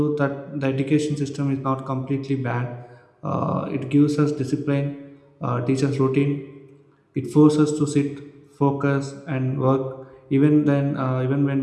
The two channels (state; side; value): identical; both; correlation 1.00